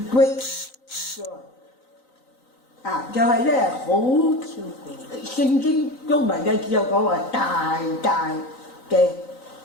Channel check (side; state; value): right; late; 3.9 ms